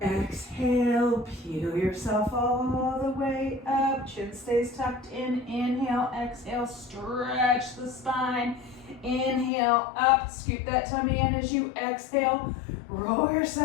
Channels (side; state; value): right; drops out; at 9.5 s